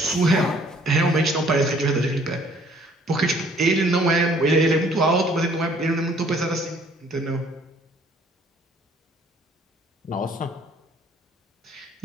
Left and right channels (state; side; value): normal; both; correlation 0.59